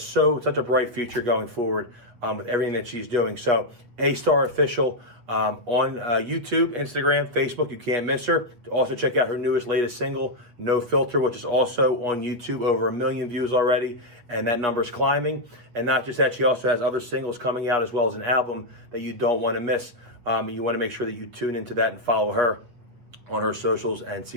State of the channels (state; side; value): late; left; 8.3 ms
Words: such a bright future going forward with everything that she's doing. So A-Star Official on YouTube, Instagram, Facebook, you can't miss her. Also check out her latest single, No Filter, which is also on YouTube, over 1 million views already, and that number is climbing. And not just that, she also has other singles coming out as well as an album that you don't want to miss. You want to make sure that you tune into that and follow her on her socials and see